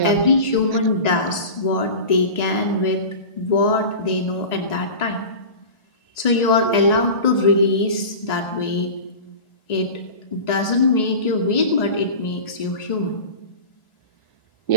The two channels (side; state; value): right; late; 1.9 ms